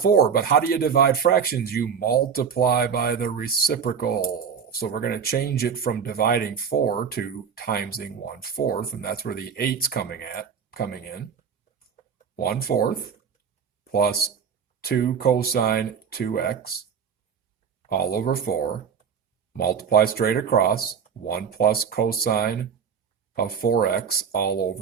but how do you divide fractions? You multiply by the reciprocal. So we're going to change it from dividing 4 to timesing 1/4, and that's where the 8's coming in. 1/4 plus 2 cosine 2x all over 4, multiply straight across, 1 plus cosine of 4x all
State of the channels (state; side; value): quieter; left; 6.9 dB